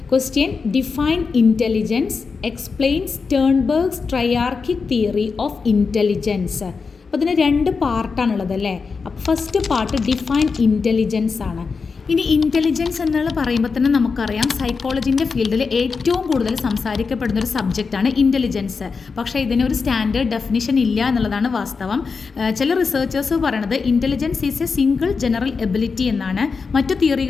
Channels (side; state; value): right; quieter; 4.9 dB